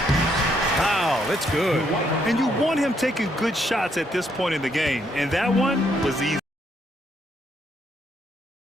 Wow, that's good. And you want him taking good shots at this point in the game. And that one was easy.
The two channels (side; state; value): both; normal; correlation 0.73